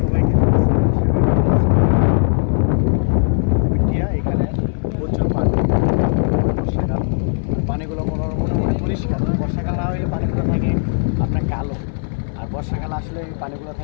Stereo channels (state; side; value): silent; right; digital silence